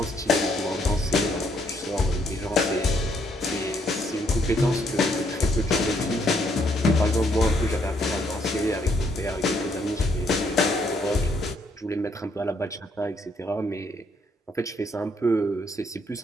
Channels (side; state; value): both; normal; correlation 0.70